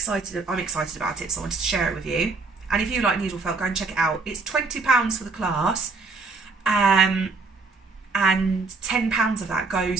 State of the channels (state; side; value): quieter; left; 3.9 dB